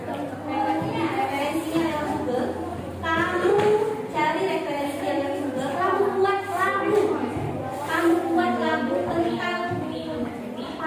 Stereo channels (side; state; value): both; identical; correlation 1.00